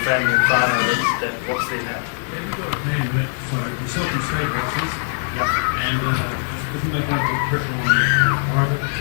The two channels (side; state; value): right; silent; digital silence